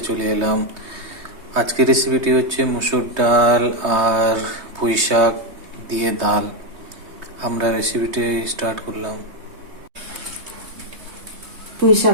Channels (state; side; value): late; left; 3.2 ms